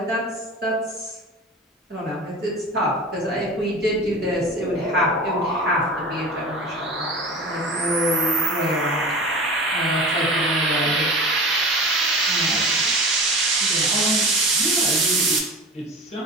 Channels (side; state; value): both; normal; correlation 0.33